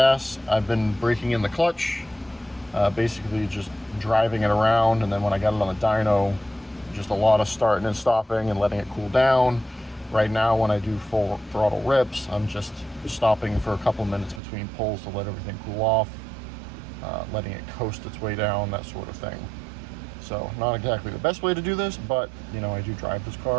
I've been breaking in the clutch, basically just driving it around, and then when I got it on the dyno, just a lot of starting and stopping and letting it cool down. Right now, when I do full throttle rips, I'm just stopping for a couple minutes between pulls to let everything cool off, letting it coast its way down, that sort of thing. So not exactly the best way to do this, but you know, I do drive this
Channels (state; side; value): drops out; left; at 14.4 s